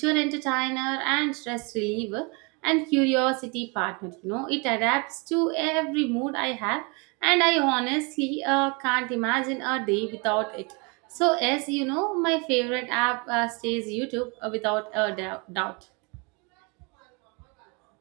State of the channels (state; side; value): quieter; left; 31.2 dB